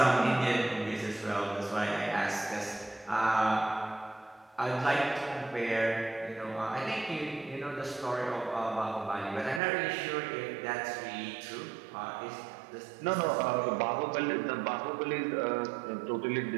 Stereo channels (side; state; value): left; drops out; at 9.6 s